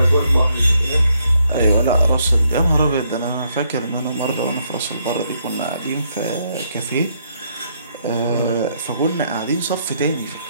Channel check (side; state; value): both; inverted; correlation -0.74